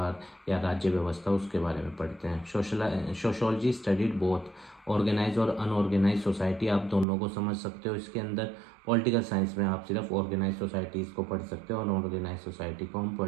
या राज्य व्यवस्था, उसके बारे में पढ़ते हैं। सोशोलॉजी स्टडीड बोथ ऑर्गेनाइज और अनऑर्गेनाइज सोसाइटी, आप दोनों को समझ सकते हो इसके अंदर। पॉलिटिकल साइंस में आप सिर्फ ऑर्गेनाइज सोसाइटीज़ को पढ़ सकते हो और अनऑर्गेनाइज सोसाइटी को हम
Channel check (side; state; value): left; drops out; at 7.1 s